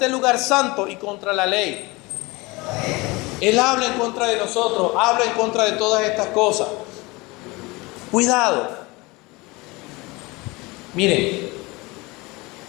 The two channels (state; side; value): quieter; right; 24.0 dB